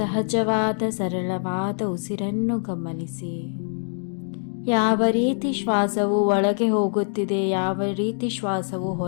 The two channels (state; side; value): silent; right; 58 dB below the other